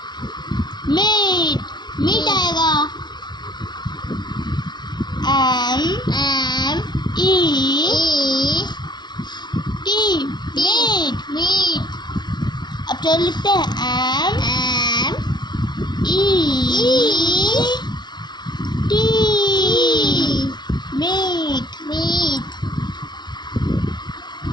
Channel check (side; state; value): right; late; 0.20 ms